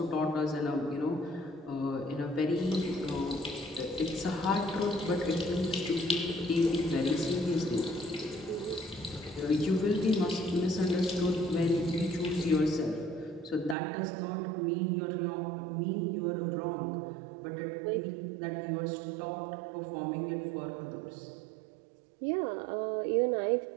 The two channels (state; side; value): drops out; left; at 13.8 s